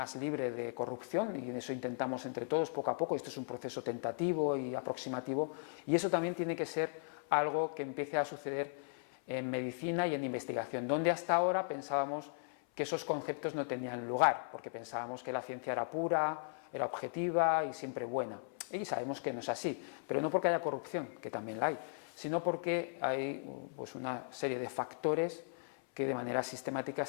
libre de corrupción, y en eso intentamos entre todos poco a poco. Esto es un proceso tentativo y aproximativo, y eso también tiene que ser algo que empiece a suceder en medicina y en investigación, donde hasta ahora pensábamos que esos conceptos no tenían lugar, porque pensábamos que la ciencia era pura, era objetiva y siempre buena, y sabemos que no es así, pero no porque haya corrupción, que también la hay, sino porque hay pues una serie de factores que de manera sistemática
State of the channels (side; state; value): right; silent; 53 dB below the other